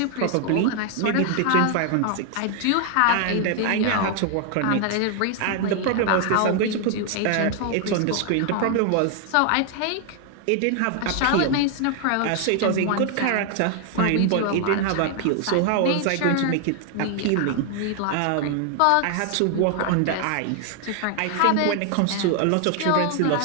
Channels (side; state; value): both; different; correlation 0.00